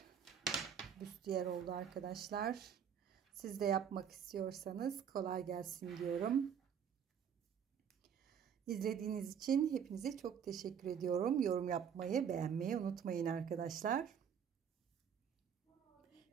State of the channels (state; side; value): quieter; left; 7.9 dB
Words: büstiyer oldu arkadaşlar. Siz de yapmak istiyorsanız kolay gelsin diyorum. İzlediğiniz için hepinize çok teşekkür ediyorum. Yorum yapmayı, beğenmeyi unutmayın arkadaşlar.